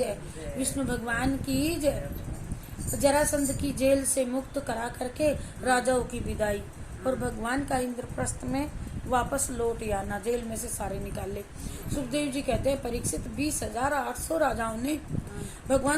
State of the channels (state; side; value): identical; both; correlation 1.00